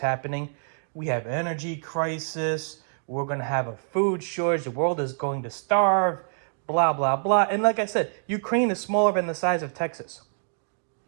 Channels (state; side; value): silent; left; digital silence